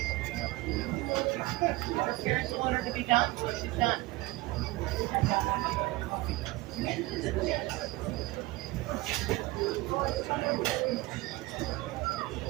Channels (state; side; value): quieter; left; 20.3 dB